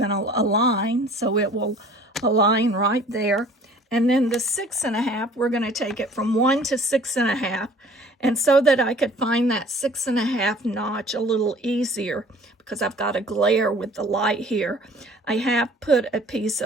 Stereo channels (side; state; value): both; normal; correlation 0.51